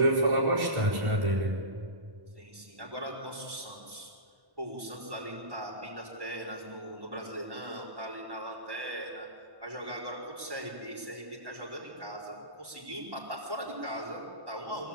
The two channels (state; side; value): late; left; 1.1 ms